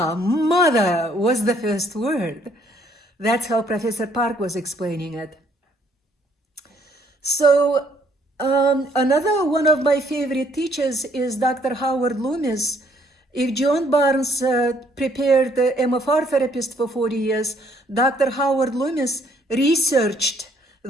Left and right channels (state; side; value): normal; both; correlation 0.65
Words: was the first word. That's how Professor Park was explaining it. So another one of my favorite teachers is Dr. Howard Loomis. If John Barnes prepared the MFR therapist for 40 years, Dr. Howard Loomis researched